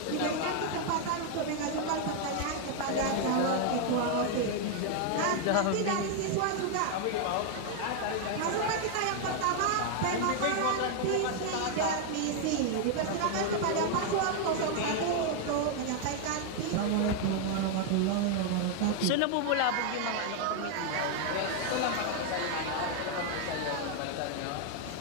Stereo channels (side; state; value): both; different; correlation 0.00